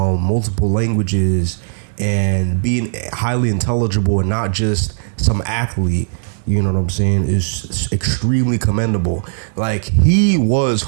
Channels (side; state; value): left; silent; digital silence